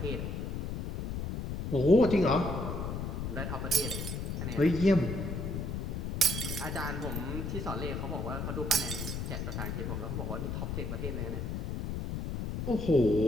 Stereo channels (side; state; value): left; noise; rumble, 3 dB below the sound